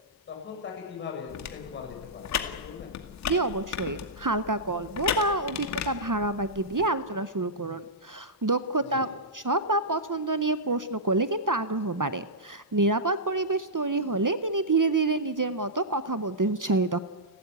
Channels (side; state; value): both; normal; correlation -0.12